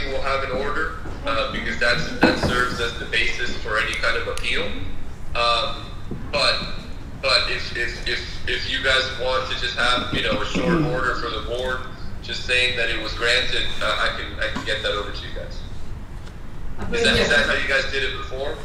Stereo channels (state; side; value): identical; both; correlation 1.00